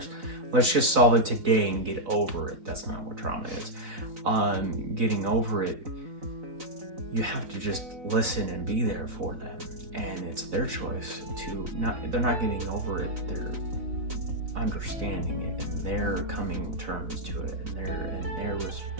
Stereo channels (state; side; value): late; left; 4.0 ms